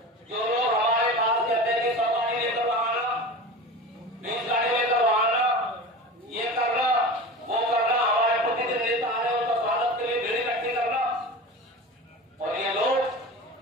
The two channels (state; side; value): normal; both; correlation 0.31